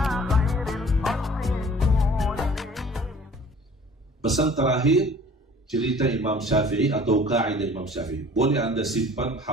terakhir, cerita Imam Syafi'i atau kaidah Imam Syafi'i. Boleh anda simpan,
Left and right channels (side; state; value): both; normal; correlation 0.49